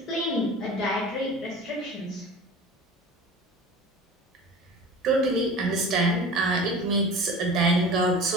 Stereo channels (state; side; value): normal; both; correlation 0.38